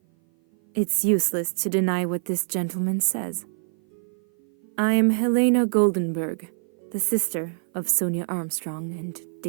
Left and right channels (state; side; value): silent; left; 56 dB below the other